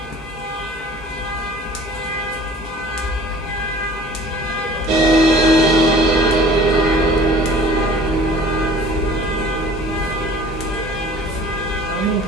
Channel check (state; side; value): normal; both; correlation 0.47